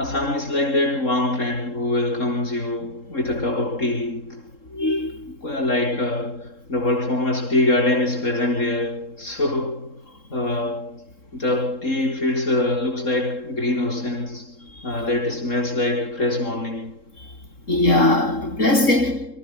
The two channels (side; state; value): right; late; 3.7 ms